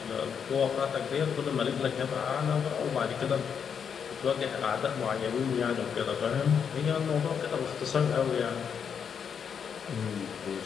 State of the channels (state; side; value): quieter; right; 7.2 dB